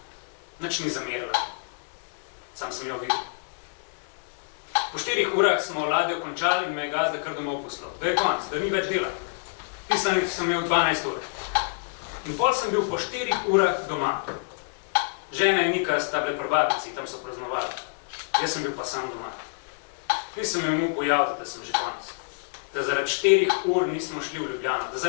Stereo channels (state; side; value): silent; right; digital silence